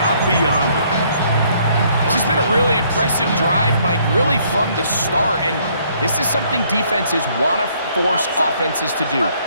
beyond it. This has been a really impressive drive, Mike, really from the start. And this is something defenses want to force offenses to do.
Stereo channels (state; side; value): inverted; both; correlation -0.65